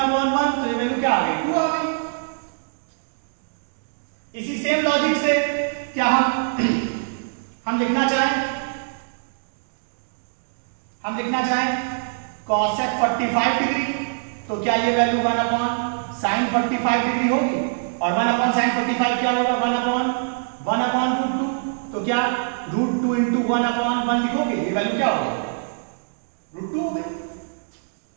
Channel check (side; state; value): left; silent; digital silence